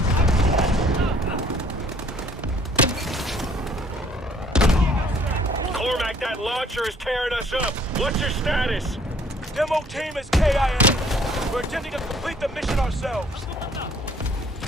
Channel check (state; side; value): normal; both; correlation 0.59